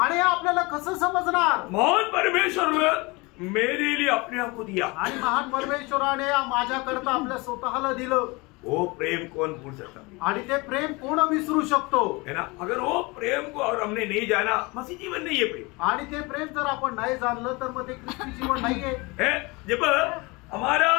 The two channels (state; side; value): quieter; right; 25.6 dB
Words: हे आपल्याला कसं समजणार? मोहन परमेश्वर ने मेरे लिए अपने आप को दिया, आणि महान परमेश्वराने माझ्याकरता आपल्या स्वतःला दिलं। वो प्रेम कौन भूल सकता आणि ते प्रेम कोण विसरू शकतो? है ना? अगर वो प्रेम को और हमने नहीं जाना, मसीह जीवन नहीं है प्रेम। आणि ते प्रेम जर आपण नाही जाणलं तर मग ते ख्रिस्ती जीवन नाहीये। है? जब हमारा